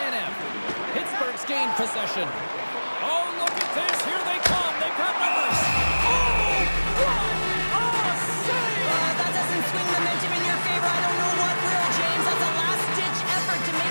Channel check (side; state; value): both; inverted; correlation -1.00